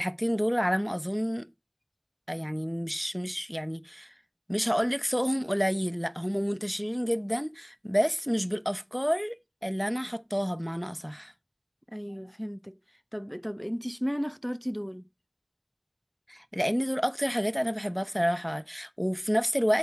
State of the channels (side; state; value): both; identical; correlation 1.00